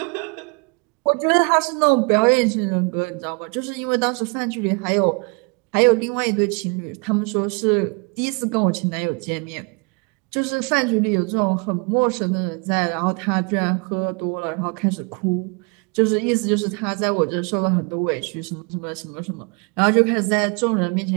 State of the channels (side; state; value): left; quieter; 33.7 dB